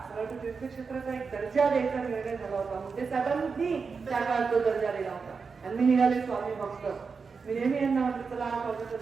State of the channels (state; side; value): quieter; left; 5.1 dB